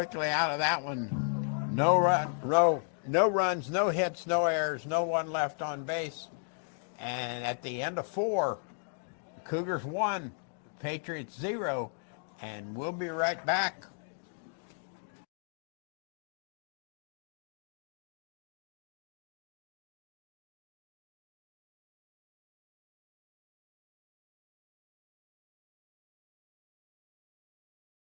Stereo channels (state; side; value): silent; right; digital silence